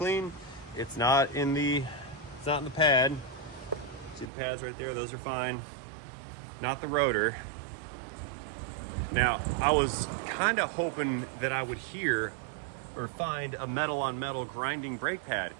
It's not in the It's not in the pad. See the pads right there? Those are fine. Not the rotor. Now, I was kind of hoping that I would hear or find a metal on metal grinding brake pad,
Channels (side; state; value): left; drops out; at 4.3 s